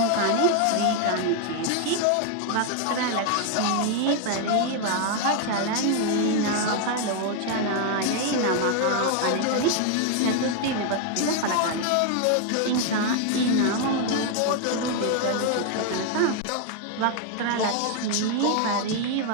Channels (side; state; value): both; different; correlation 0.01